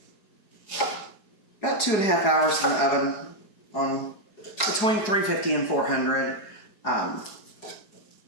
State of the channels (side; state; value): right; late; 4.8 ms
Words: about 2.5 hours in the oven on between 350 and 400.